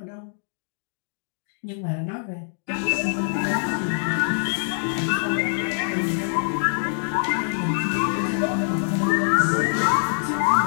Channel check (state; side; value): silent; right; digital silence